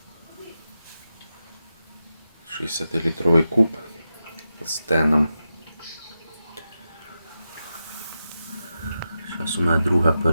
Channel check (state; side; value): inverted; both; correlation -0.90